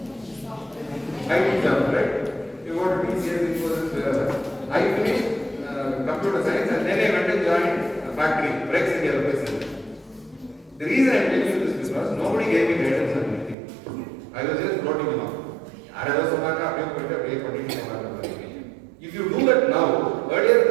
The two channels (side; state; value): left; drops out; at 13.6 s